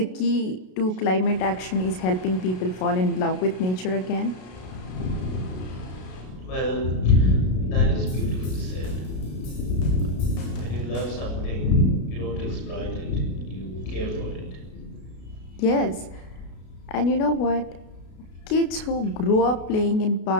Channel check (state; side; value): late; right; 33 ms